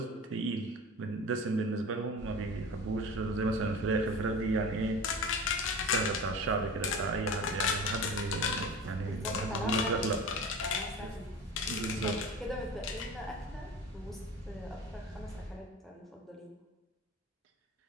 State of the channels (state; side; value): normal; both; correlation 0.34